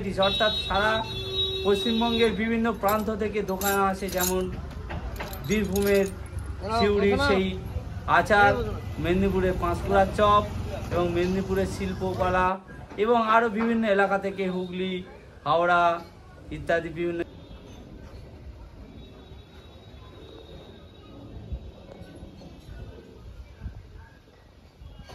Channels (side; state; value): both; identical; correlation 1.00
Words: অর্থাৎ সারা পশ্চিমবঙ্গের বিভিন্ন প্রান্ত থেকে দোকান আসে, যেমন বীরভূমের সিউড়ির সেই আচার, মেদিনীপুরের পাঁশকুড়ার চপ এবং মেদিনীপুরের শিল্পকলা, এবং আরও বিভিন্ন এলাকা থেকে হুগলি, হাওড়া ইত্যাদি বিভিন্ন।